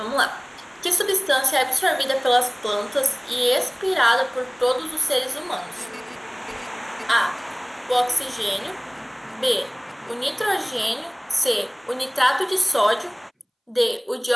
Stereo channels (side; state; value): both; identical; correlation 1.00